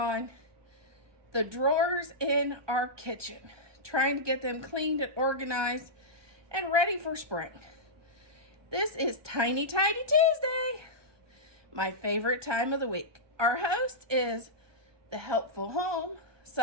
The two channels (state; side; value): late; left; 1.2 ms